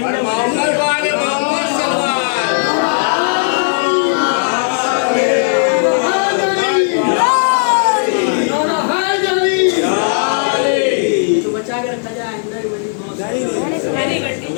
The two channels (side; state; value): right; silent; digital silence